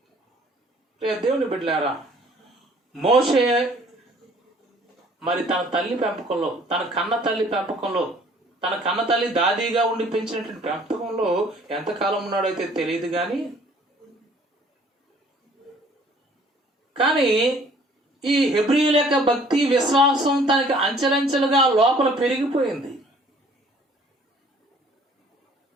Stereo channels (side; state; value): both; normal; correlation 0.56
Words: దేవుని బిడ్డలారా, మోషే మరి తన తల్లి పెంపకంలో, తన కన్న తల్లి పెంపకంలో, తన కన్న తల్లి దాదీగా ఉండి పెంచినటువంటి పెంపకంలో ఎంతకాలం ఉన్నాడైతే తెలియదు, కానీ ఈ హెబ్రీయుల యొక్క భక్తి విశ్వాసం తనకి అంచెలంచెలుగా లోపల పెరిగిపోయింది.